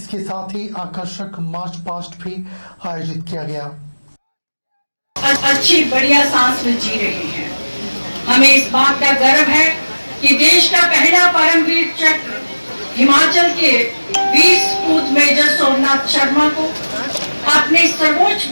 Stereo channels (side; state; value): both; inverted; correlation -1.00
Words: साथ ही आकर्षक मार्च पास्ट भी आयोजित किया गया। अच्छी बढ़िया सांस में जी रहे हैं। हमें इस बात का गर्व है कि देश का पहला परमवीर चक्र हिमाचल के वीर सपूत मेजर सोमनाथ शर्मा को अपने सर्वोच्च